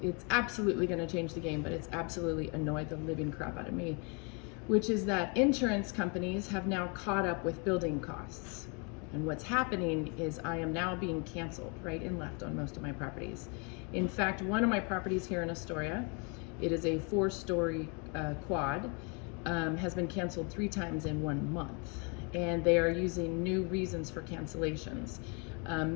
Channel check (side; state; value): right; quieter; 34.2 dB